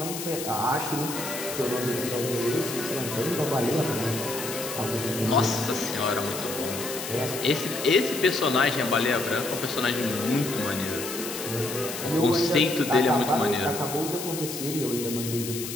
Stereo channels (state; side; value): noise; left; hiss, 7 dB below the sound